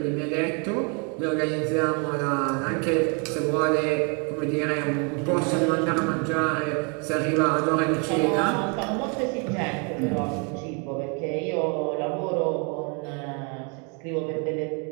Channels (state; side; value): quieter; left; 35.4 dB